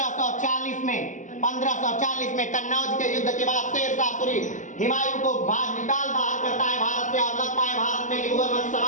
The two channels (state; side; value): late; right; 0.37 ms